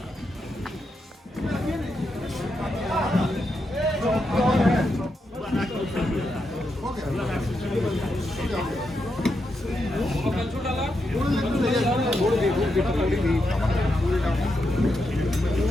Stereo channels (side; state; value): both; normal; correlation 0.84